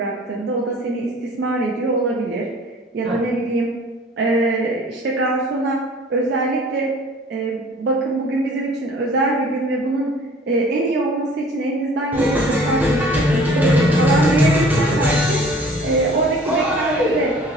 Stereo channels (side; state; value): both; normal; correlation 0.49